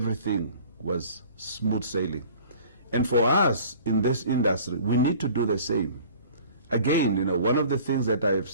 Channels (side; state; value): both; inverted; correlation -0.47